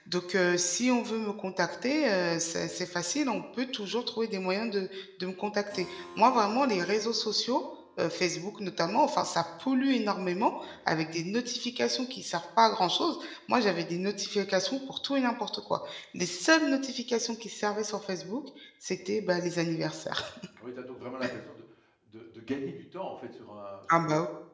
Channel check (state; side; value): identical; both; correlation 1.00